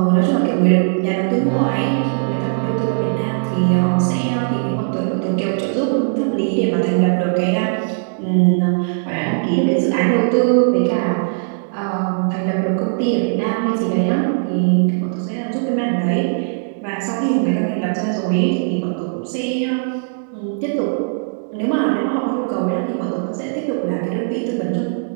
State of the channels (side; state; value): left; silent; 66 dB below the other